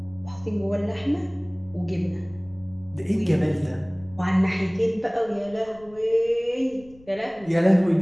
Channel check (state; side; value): noise; left; rumble, 24 dB below the sound